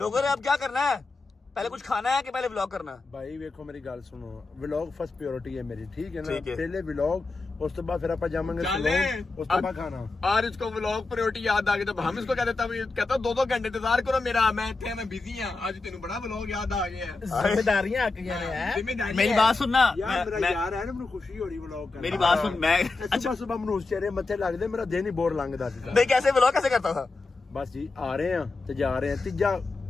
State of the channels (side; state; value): right; quieter; 3.7 dB